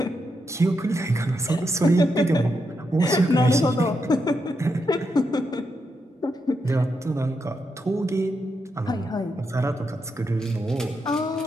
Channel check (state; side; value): normal; both; correlation 0.83